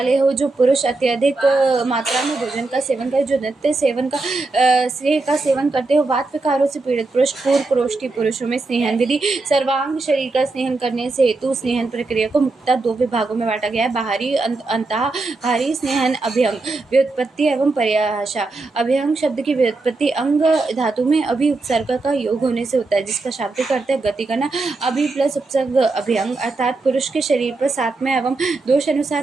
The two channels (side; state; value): left; quieter; 3.5 dB